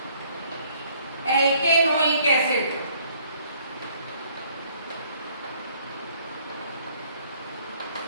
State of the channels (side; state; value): both; inverted; correlation -0.62